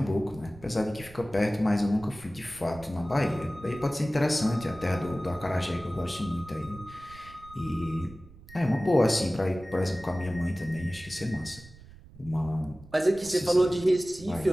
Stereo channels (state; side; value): noise; right; rumble, 21 dB below the sound